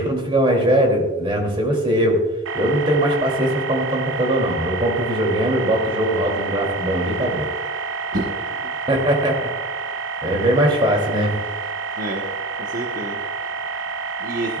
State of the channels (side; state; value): both; normal; correlation 0.36